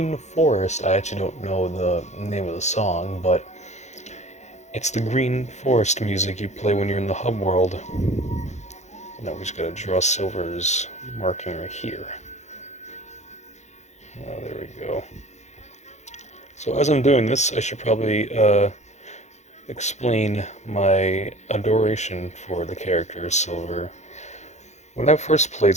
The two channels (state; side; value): late; right; 0.33 ms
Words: Forest. I actually don't know the name of the song, but it's the Green Forest music you play when you're in the hub world. Now we just gotta draw Silver's marking right here. Oh, there we go. So as I'm doing this, I should probably explain my adoration for the character Silver. When I first played